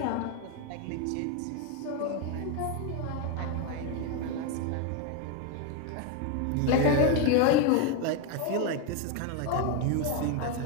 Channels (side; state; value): both; different; correlation 0.02